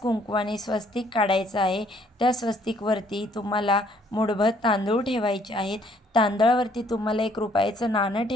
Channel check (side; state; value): both; normal; correlation 0.64